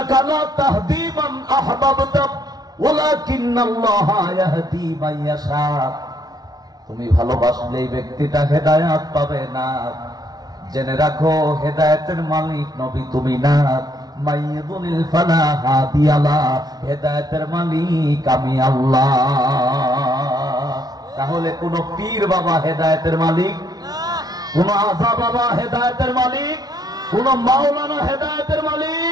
লা তাহদি মান আহবাবতা ওয়ালাকিন্নাল্লাহা ইয়াহদি মান ইয়াশা। তুমি ভালোবাসলে এই ব্যক্তিটা হেদায়েত পাবে না। জেনে রাখো হেদায়েতের মালিক নবী তুমি না, মাইয়ুদলিল ফালা হাদিয়ালা, হেদায়েতের মালিক আমি আল্লাহ। তাহলে কোন পীর বাবা হেদায়েতের মালিক, কোন আজা বাবা হেদায়েতের মালিক, কোন মাওলানা হেদায়েতের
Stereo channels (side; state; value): left; late; 0.19 ms